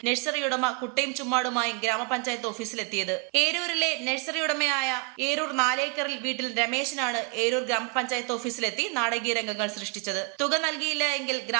നഴ്സറി ഉടമ കുട്ടയും ചുമ്മാടുമായും ഗ്രാമപഞ്ചായത്ത് ഓഫീസിലെത്തിയത്. ഏരൂരിലെ നഴ്സറി ഉടമയായ ഏരൂർ 4 ഏക്കറിൽ വീട്ടിൽ രമേശനാണ് ഏരൂർ ഗ്രാമപഞ്ചായത്ത് ഓഫീസിലെത്തി നാടകീയ രംഗങ്ങൾ സൃഷ്ടിച്ചത്. തുക നൽകിയില്ല എങ്കിൽ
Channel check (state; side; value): quieter; left; 32.4 dB